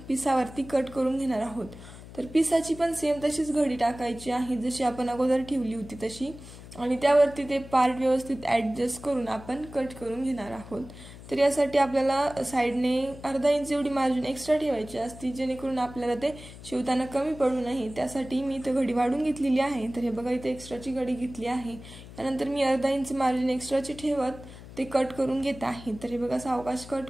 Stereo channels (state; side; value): noise; left; hum, 16 dB below the sound